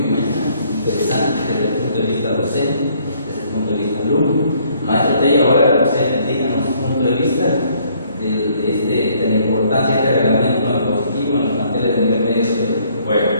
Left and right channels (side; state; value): both; inverted; correlation -0.64